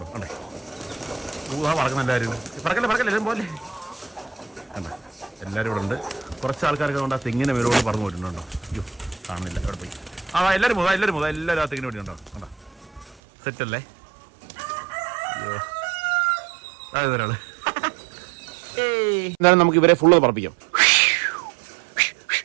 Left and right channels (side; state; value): left; drops out; at 13.2 s